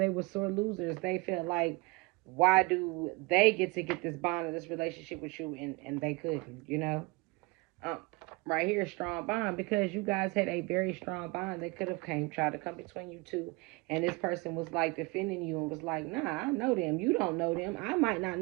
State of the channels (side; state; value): left; quieter; 26.1 dB